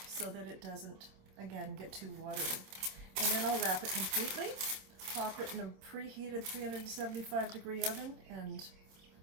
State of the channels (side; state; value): left; late; 27 ms